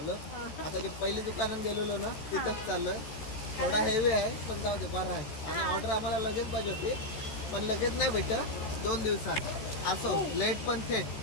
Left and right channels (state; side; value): late; right; 14 ms